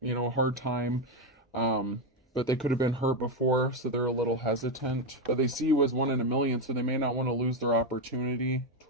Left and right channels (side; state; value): both; normal; correlation 0.08